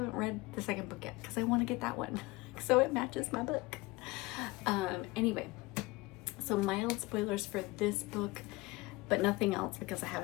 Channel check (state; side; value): quieter; right; 22.2 dB